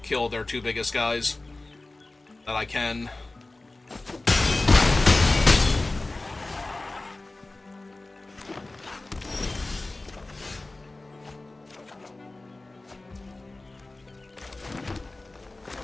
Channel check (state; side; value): quieter; right; 3.0 dB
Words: kill their 2 biggest guys. That I can.